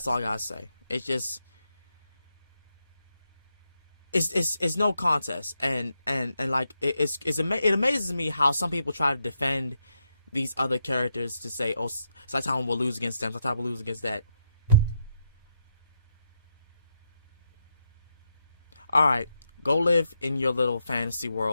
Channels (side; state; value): both; inverted; correlation -0.82